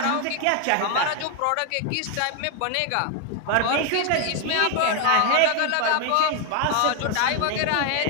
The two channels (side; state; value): both; different; correlation 0.00